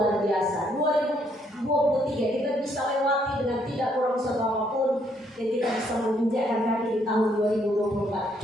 biasa. 2023 kita bisa lewati dengan tidak kurang apapun, dan kita bisa menginjakkan kaki di tahun 2024.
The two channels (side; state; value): both; normal; correlation 0.70